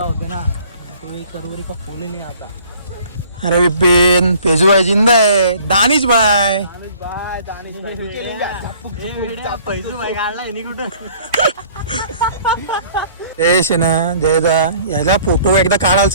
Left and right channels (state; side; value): inverted; both; correlation -0.54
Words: होते ना तो एक करोरी का फूल ही नहीं आता. अरे विपिन, पेजू भाई जिंदा है. दानिश भाई, फैजू भाई काढला आहे कुठं. यश आहे ना जयदा, याला फोटो एकदा काढायला